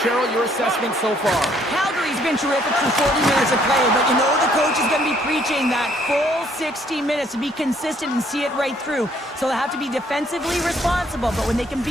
Cheryl, your assessment so far? Calgary's been terrific for 40 minutes of play, but you know the coach is going to be preaching that full 60 minutes to be consistent and see it right through. So they have to be defensively responsible, but when they can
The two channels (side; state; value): both; normal; correlation 0.65